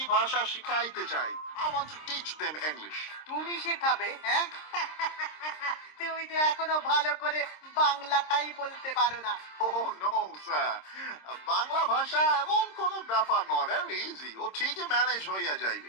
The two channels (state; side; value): late; right; 26 ms